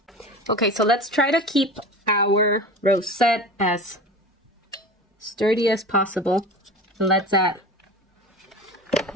Okay, so let's try to keep our rosette as sturdy as possible. And let's add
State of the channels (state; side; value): normal; both; correlation 0.34